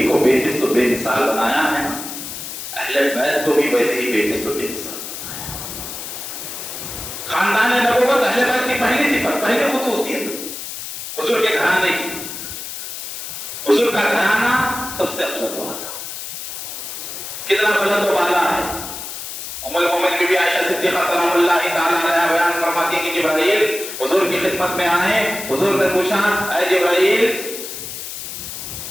کو بے مثل و بے مثال بنایا ہے اہل بیت کو بھی ویسے ہی بے مثل و بے مثال بنایا خاندان نبوت اہل بیت کی پہلی صفت پہلی خصوصیت حضور کے گھرانے کی حضور کا گھرانہ سب سے افضل والا کتنا بلند و بالا ہے ام المومنین بی بی عائشہ صدیقہ سلام اللہ تعالی علیہا بیان فرماتی ہیں کہ جبرائیل حضور کی خدمت میں آئے حضور نے پوچھا اے جبرائیل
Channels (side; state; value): left; noise; hiss, 8 dB below the sound